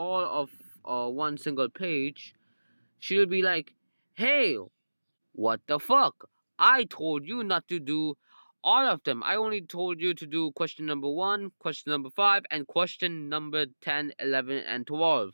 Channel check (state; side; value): inverted; both; correlation -1.00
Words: of one single page, she'll be like, "Hey, what the fuck? I told you not to do all of them. I only told you to do question number 1, question number 5, and question number 10, 11, and